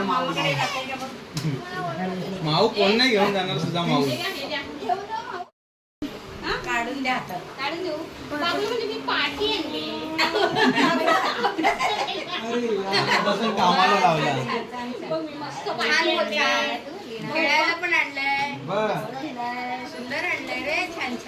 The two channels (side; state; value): both; identical; correlation 1.00